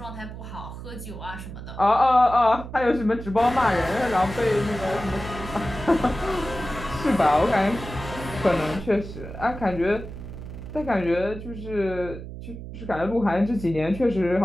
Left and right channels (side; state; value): right; noise; hum, 11 dB below the sound